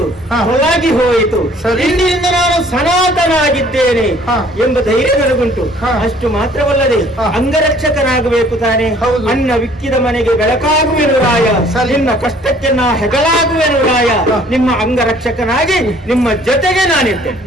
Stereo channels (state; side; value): normal; both; correlation 0.56